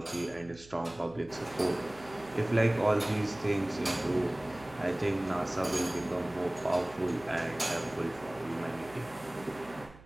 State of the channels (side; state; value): right; noise; hum, 21 dB below the sound